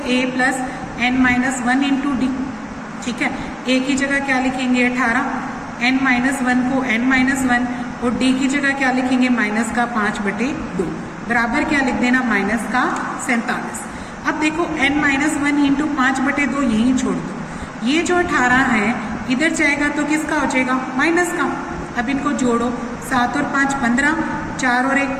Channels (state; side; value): identical; both; correlation 1.00